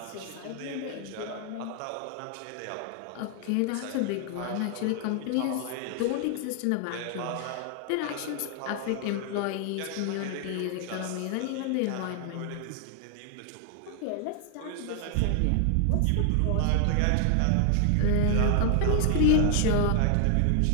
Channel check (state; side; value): different; both; correlation 0.00